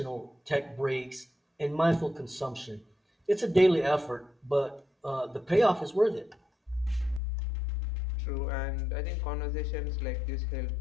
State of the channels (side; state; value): right; drops out; at 7.2 s